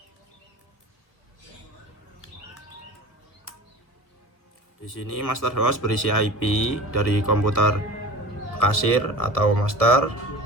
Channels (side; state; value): right; late; 1.3 ms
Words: Di sini master host berisi IP dari komputer kasir atau master,